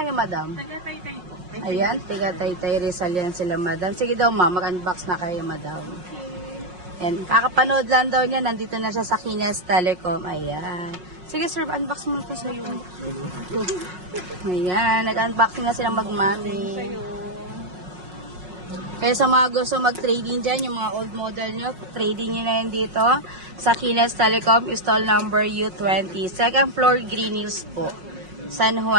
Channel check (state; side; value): late; left; 5.5 ms